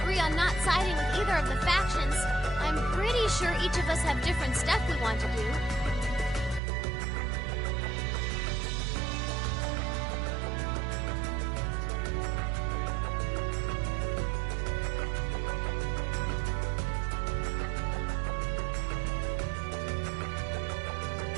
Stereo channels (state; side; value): drops out; left; at 6.6 s